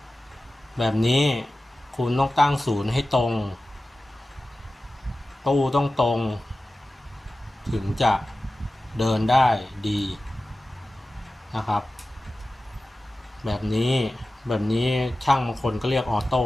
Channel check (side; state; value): both; normal; correlation 0.95